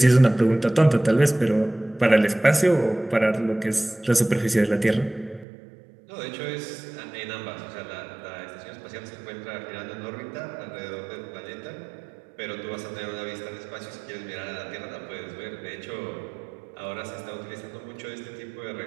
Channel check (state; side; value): drops out; left; at 5.5 s